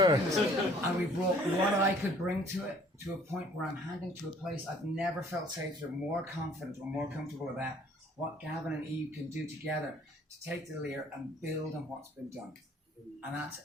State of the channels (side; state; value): both; normal; correlation 0.56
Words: And we brought what I could bring to it to a point where I'm handing to a place I've never felt safer, more confident or more comfortable about what Gavin and Eve can do together to take the LIR and build on what's been done. And that's